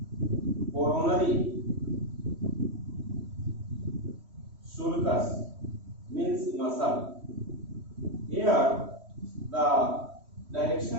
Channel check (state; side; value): late; left; 3.1 ms